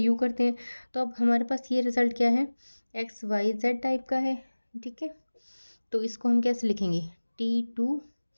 करते हैं। तो अब हमारे पास ये रिजल्ट क्या है, XYZ टाइप का है, ठीक है। तो इसको हम कैसे लिखेंगे, T2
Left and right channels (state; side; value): inverted; both; correlation -1.00